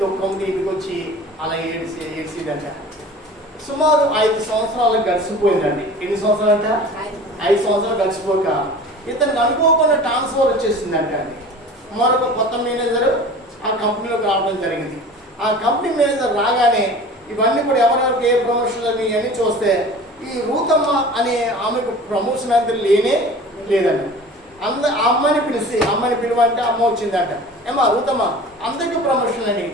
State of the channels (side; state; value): both; normal; correlation 0.40